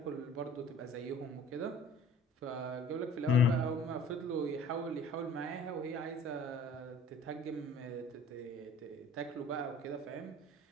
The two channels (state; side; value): normal; both; correlation 0.49